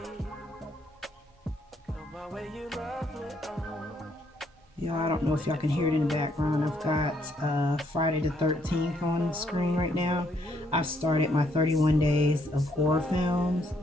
Come my way, you lovely. Y'all, I don't know if y'all can hear it in the background. I've got Friday the 13th on the screen right now. I started my 31 days of horror films.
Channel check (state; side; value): normal; both; correlation 0.71